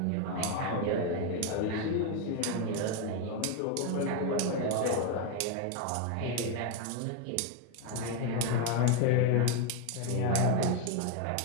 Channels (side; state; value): both; different; correlation 0.01